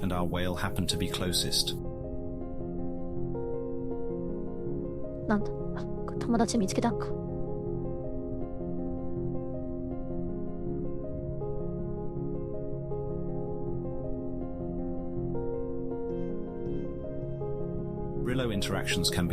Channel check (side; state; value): both; identical; correlation 1.00